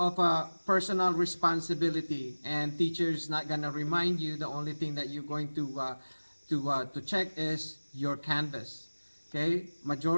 a personal responsibility, and teachers not gonna remind you. The only thing that you're going to check is your Canvas. Okay,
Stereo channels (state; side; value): inverted; both; correlation -1.00